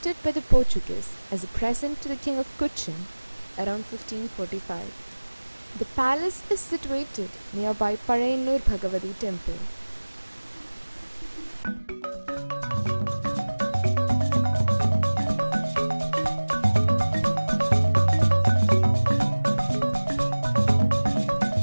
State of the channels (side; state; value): both; inverted; correlation -1.00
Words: by the Portuguese as a present to the King of Cochin around 1545. The palace is situated nearby Parayanur Bhagavati temple.